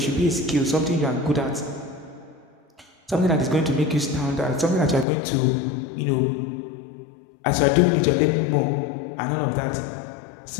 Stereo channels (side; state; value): right; drops out; at 5.1 s